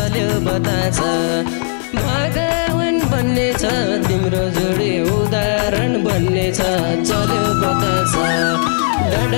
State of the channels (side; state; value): right; silent; 66 dB below the other